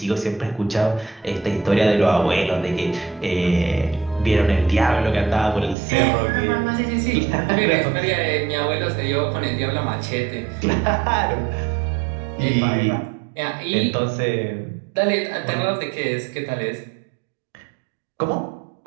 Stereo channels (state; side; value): drops out; left; at 5.8 s